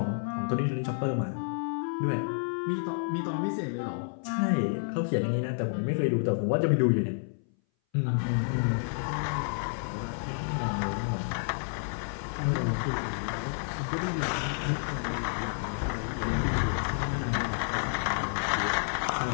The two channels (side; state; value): right; silent; 58 dB below the other